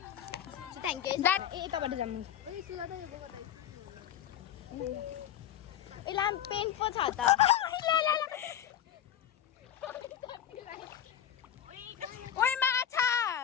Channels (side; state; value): right; quieter; 10.3 dB